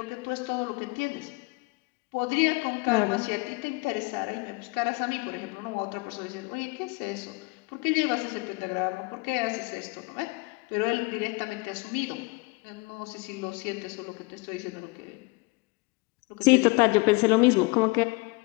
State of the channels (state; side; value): quieter; right; 26.0 dB